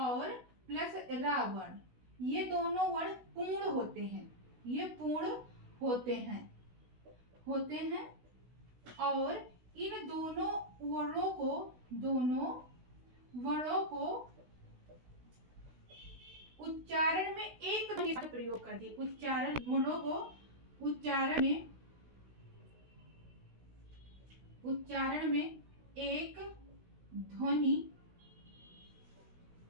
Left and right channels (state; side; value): late; left; 16 ms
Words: प्लस रा वर्ण, ये दोनों वर्ण पूर्ण होते हैं, ये पूर्ण होते हैं और इन दोनों वर्णों को उच्चारण में एक प्रयोग कर दिए, उच्चारण वर्णों को उच्चारण में एक ध्वनि